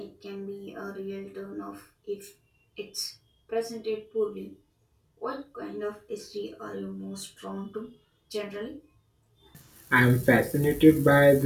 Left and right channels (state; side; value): identical; both; correlation 1.00